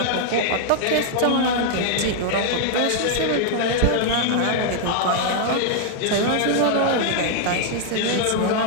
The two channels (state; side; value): different; both; correlation -0.01